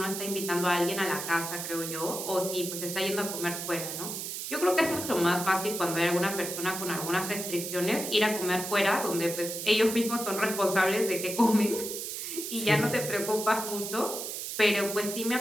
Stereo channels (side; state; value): right; noise; hiss, 6 dB below the sound